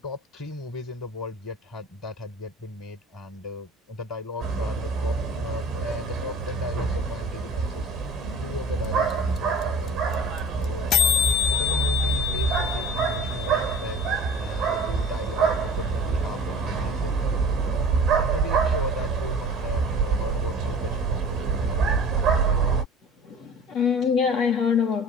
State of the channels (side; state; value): both; normal; correlation 0.43